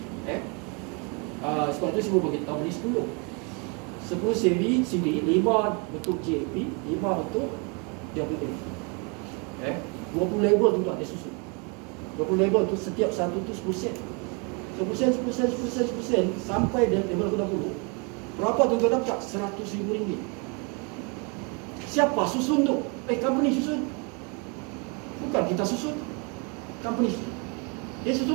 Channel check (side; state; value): left; quieter; 33.5 dB